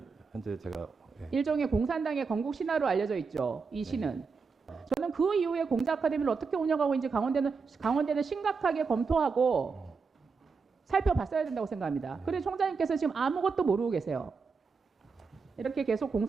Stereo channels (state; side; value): quieter; left; 5.0 dB